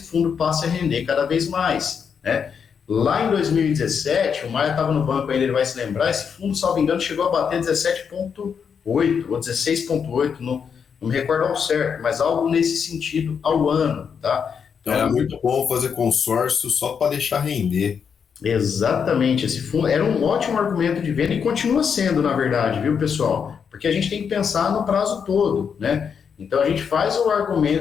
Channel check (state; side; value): quieter; right; 6.8 dB